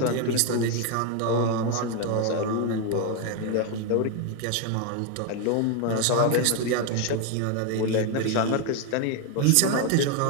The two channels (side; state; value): both; different; correlation 0.01